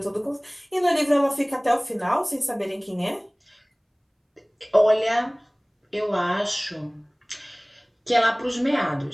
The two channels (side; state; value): both; identical; correlation 1.00